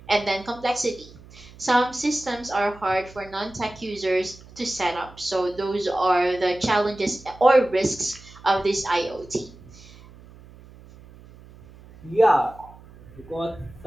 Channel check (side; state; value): right; noise; hum, 21 dB below the sound